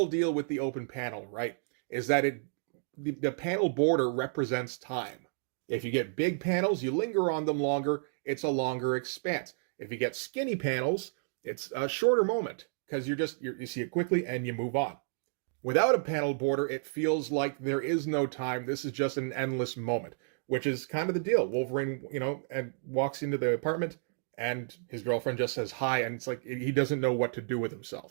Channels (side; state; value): left; silent; digital silence